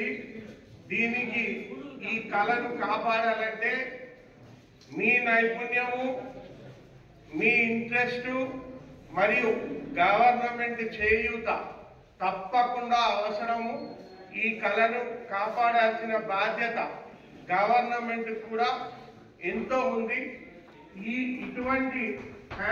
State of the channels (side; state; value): both; identical; correlation 1.00